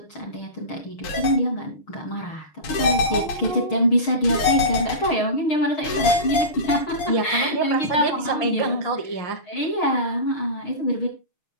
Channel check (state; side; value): late; right; 6.4 ms